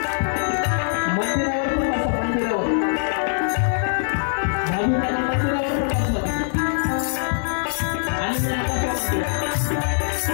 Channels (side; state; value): right; silent; digital silence